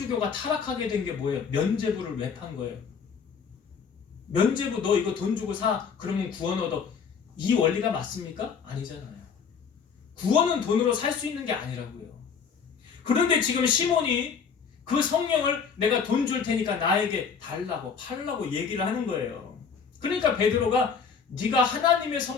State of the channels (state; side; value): quieter; right; 6.3 dB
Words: 타락하게 된 게 뭐예요? 면죄부를 왜 판 거예요? 면죄부 너 이거 돈 주고 사 그러면 구원 얻어. 이 원리가 맞습니까? 아니잖아요. 구원은 돈으로 살 수 있는 게 아니라고요. 그런데 지금 시몬이 그 성령을 내가 돈 줄 테니까 나에게 달라고 팔라고 얘기를 하는 거예요. 그러니까 베드로가 네가 하나님의